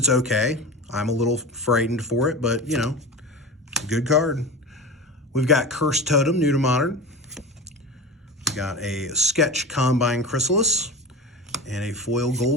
okay. I'm a little frightened for it, but good card. We've got Cursed Totem, new to modern. We've got a Sketch Combine Chrysalis and a foil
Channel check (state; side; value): normal; both; correlation 0.29